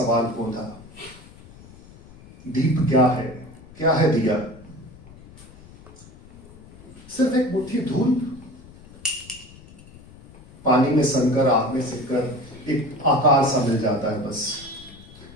पौधा, दीप क्या है? क्या है दिया? सिर्फ एक मुट्ठी धूल, पानी में सनकर, आग में सिककर एक आकार सा मिल जाता है बस,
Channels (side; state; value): left; noise; rumble, 21 dB below the sound